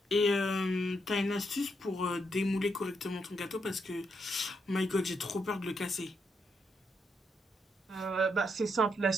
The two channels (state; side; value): normal; both; correlation 0.79